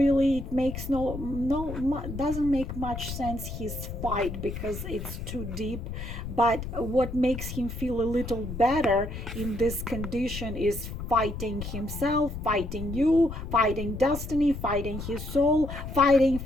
it makes doesn't make much sense, his fight, because it's too deep. But what makes him feel a little better in this condition is fighting himself, fighting you, fighting destiny, fighting his soul, fighting.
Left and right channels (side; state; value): left; noise; rumble, 7 dB below the sound